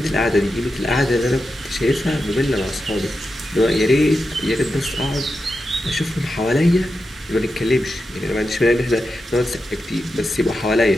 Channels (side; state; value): both; normal; correlation 0.89